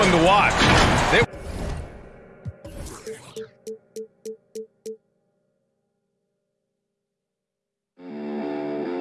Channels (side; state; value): both; identical; correlation 1.00